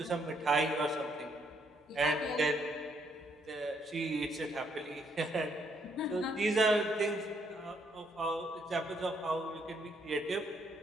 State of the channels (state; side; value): normal; both; correlation 0.72